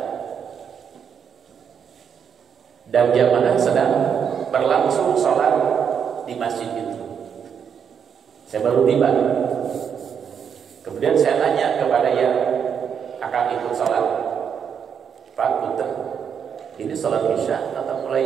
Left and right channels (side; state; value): left; quieter; 7.5 dB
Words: dan jamaah sedang berlangsung sholat di masjid itu. Saya baru tiba. Kemudian saya tanya kepada yang akan ikut sholat, Pak Punten, ini sholat isya atau